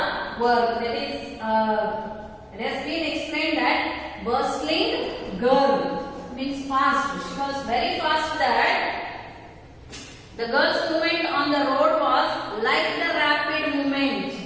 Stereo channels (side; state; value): both; identical; correlation 1.00